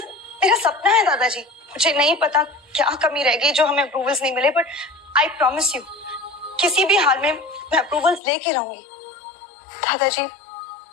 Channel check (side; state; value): right; drops out; at 8.2 s